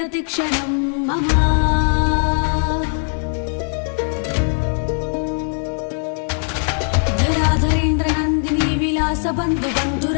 मम धराधरेन्द्र नन्दिनी विलास बन्धु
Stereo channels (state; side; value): silent; right; 57 dB below the other